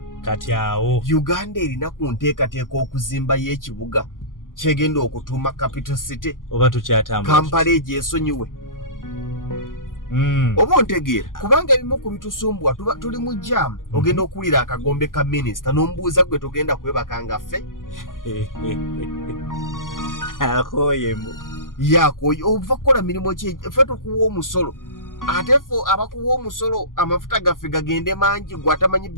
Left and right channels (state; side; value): late; right; 0.90 ms